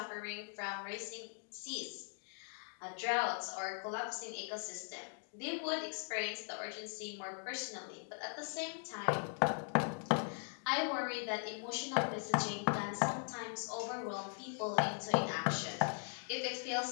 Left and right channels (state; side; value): silent; right; 51 dB below the other